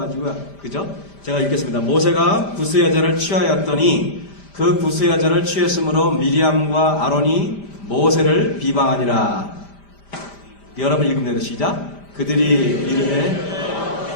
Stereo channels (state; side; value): late; right; 5.0 ms